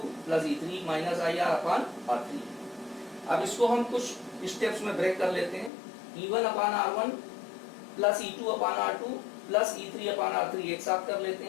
plus E3 minus IR upon R3। अब इसको हम कुछ स्टेप्स में ब्रेक कर लेते हैं। E1 upon R1 plus E2 upon R2 plus E3 upon R3 एक साथ कर लेते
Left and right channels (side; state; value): right; drops out; at 5.7 s